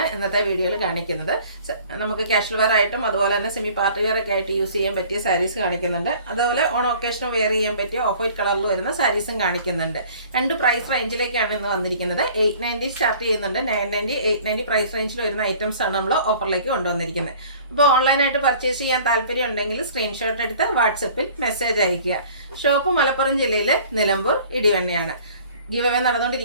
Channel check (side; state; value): both; inverted; correlation -0.50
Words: ഇന്നത്തെ വീഡിയോയിൽ കാണിക്കുന്നത്. നമുക്ക് കാഷ്വൽ വെയർ ആയിട്ടും അതുപോലെ തന്നെ സെമി പാർട്ടി വെയർ ഒക്കെ ആയിട്ട് യൂസ് ചെയ്യാൻ പറ്റിയ സാരീസ് കാണിക്കുന്നുണ്ട്. അതുപോലെ ഓൺ ഒക്കേഷന് വെയർ ചെയ്യാൻ പറ്റിയ ഓഫ് വൈറ്റ് കളറിൽ വരുന്ന സാരീസും കാണിക്കുന്നുണ്ട്. രണ്ട് പ്രൈസ് റേഞ്ചിലേക്കാണ് ഇന്ന് വന്നിരിക്കുന്നത്. 890 സ്റ്റാർട്ട് ചെയ്യുന്നുണ്ട്, 990, 890 പ്രൈസ് റേഞ്ചിൽ വരുന്ന ഐറ്റംസ് ആണ് നമ്മൾ ഓഫറിലേക്ക് കൊണ്ടുവന്നിരിക്കുന്നത്. അപ്പോൾ ഓൺലൈനായിട്ട് പർച്ചേസ് ചെയ്യാൻ താല്പര്യം ഉണ്ടെങ്കിൽ സ്ക്രീൻഷോട്ട് എടുത്ത് വാട്സപ്പിൽ മെസ്സേജ് അയയ്ക്കുക. ഷോപ്പ് മലപ്പുറം ജില്ലയിലെ നിലമ്പൂർ ഇടിവണ്ണയാണ്. ഗീവ് അവേ